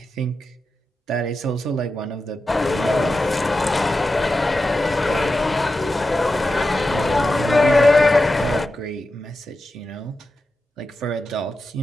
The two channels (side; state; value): both; normal; correlation 0.91